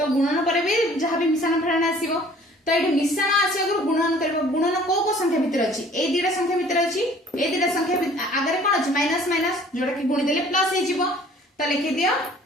गुणन पर भी जहां भी मिश्रण फेडन आसीबो। तो एटा मिश्रण आसी अगर गुणन करबो गुणन को संख्या भीतर अछि ए दिटा संख्या भीतर अछि ए दिटा संख्या आगरे कोन अछि माइनस माइनस जोटा कि गुणी देले प्लस हे जिवो। तो लिखि दियो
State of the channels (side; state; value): both; normal; correlation 0.53